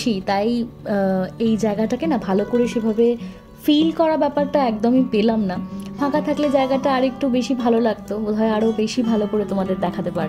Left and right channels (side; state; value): both; identical; correlation 1.00